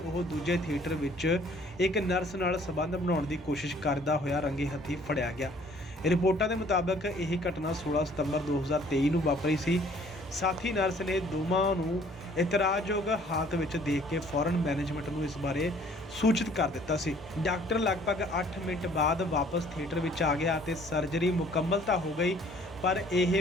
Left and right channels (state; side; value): normal; both; correlation 0.57